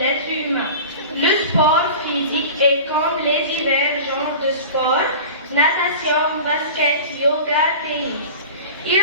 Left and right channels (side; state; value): both; inverted; correlation -0.36